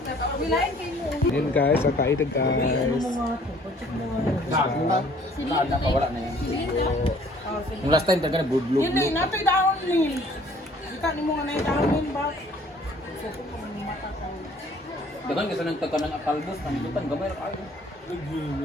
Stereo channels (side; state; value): both; normal; correlation 0.56